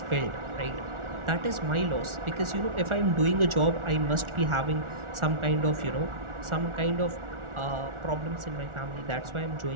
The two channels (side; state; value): left; late; 1.4 ms